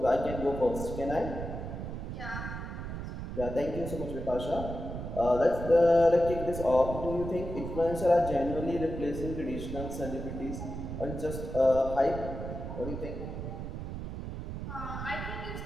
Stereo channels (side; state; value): right; noise; rumble, 6 dB below the sound